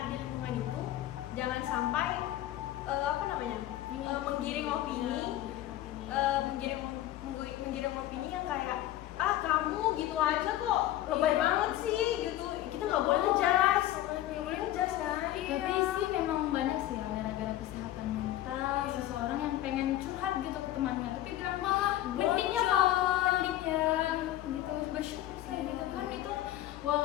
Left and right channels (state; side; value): quieter; right; 14.0 dB